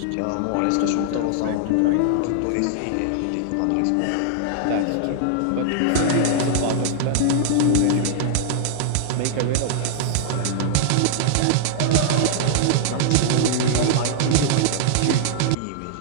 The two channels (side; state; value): both; different; correlation 0.00